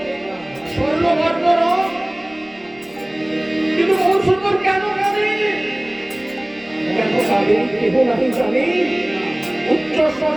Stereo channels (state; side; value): noise; right; rumble, 28 dB below the sound